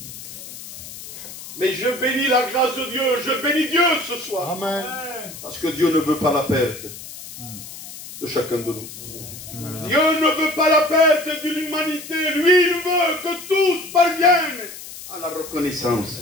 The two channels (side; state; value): left; noise; hiss, 13 dB below the sound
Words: Mais je bénis la grâce de Dieu, je bénis Dieu ce soir. Amen. Parce que Dieu ne veut pas la perte de chacun de nous. Dieu ne veut pas la perte d'une humanité. Lui, il veut que tous parviennent à la